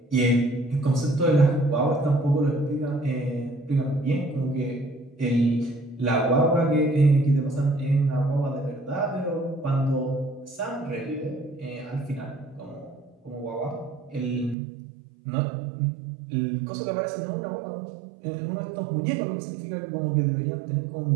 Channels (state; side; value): drops out; left; at 14.6 s